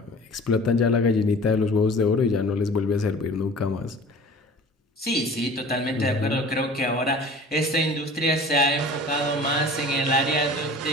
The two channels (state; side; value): normal; both; correlation 0.43